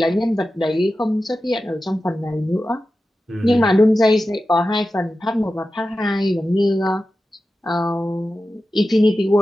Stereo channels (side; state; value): both; normal; correlation 0.93